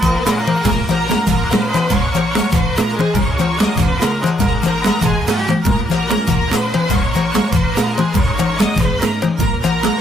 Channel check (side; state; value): both; normal; correlation 0.75